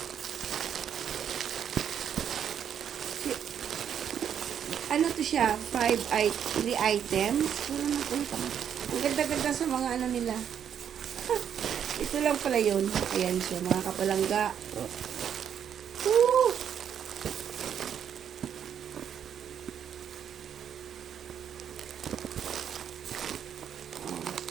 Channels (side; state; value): left; quieter; 8.7 dB